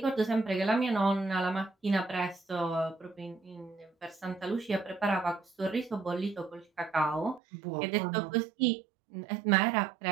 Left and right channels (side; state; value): left; drops out; at 7.4 s